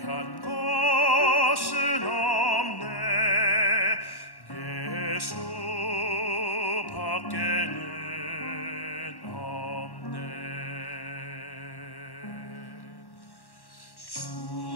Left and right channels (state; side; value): late; right; 1.1 ms